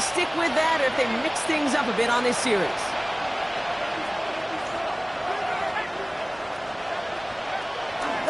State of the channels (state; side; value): noise; left; hum, 26 dB below the sound